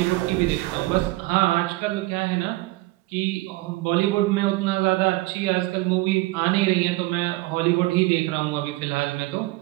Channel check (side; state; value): left; quieter; 20.4 dB